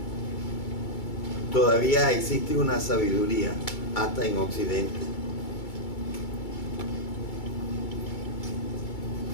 todavía existe una sabiduría hasta en Occidente,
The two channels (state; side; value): late; right; 2.2 ms